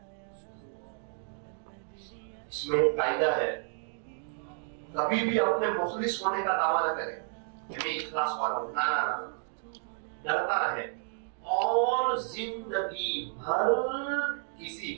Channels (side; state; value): left; silent; 57 dB below the other